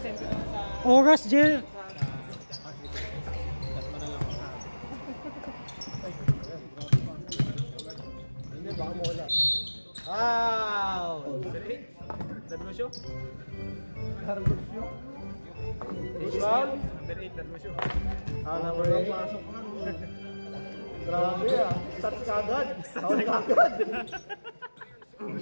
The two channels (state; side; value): inverted; both; correlation -1.00